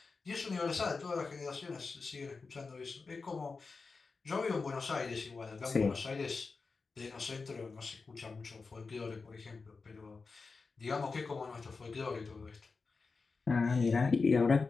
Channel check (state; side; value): quieter; right; 4.4 dB